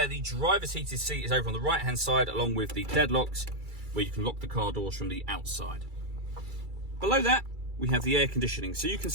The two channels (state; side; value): late; left; 2.3 ms